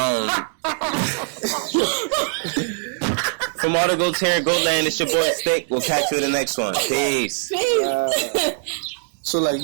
From all the goats here at Goatland, it's your boy Stick. We'll catch you in the next one. Peace. So like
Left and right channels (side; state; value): left; silent; digital silence